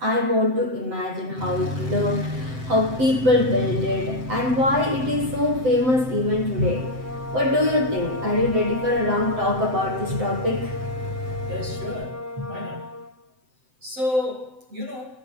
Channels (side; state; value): left; late; 7.8 ms